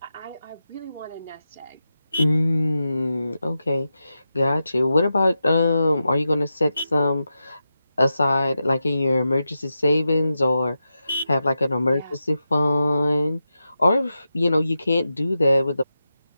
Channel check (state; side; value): inverted; both; correlation -0.89